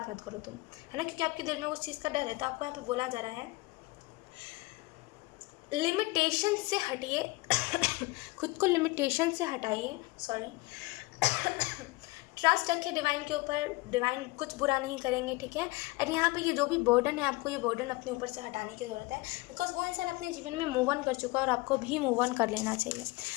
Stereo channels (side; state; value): right; quieter; 22.8 dB